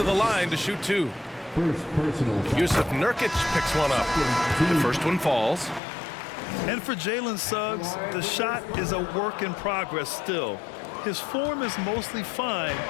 the line to shoot 2. Yusuf Nurkic picks one up. The first one falls. And for Jalen Suggs, the shot is a work in progress still. His form is mostly fine,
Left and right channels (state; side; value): drops out; right; at 5.8 s